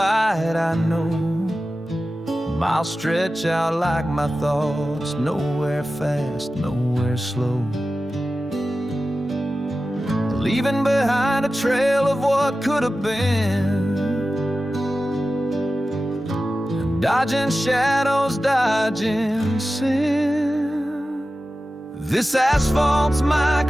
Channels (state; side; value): normal; both; correlation 0.94